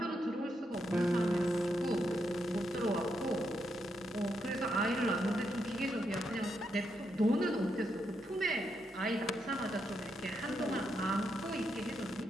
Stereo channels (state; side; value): normal; both; correlation 0.81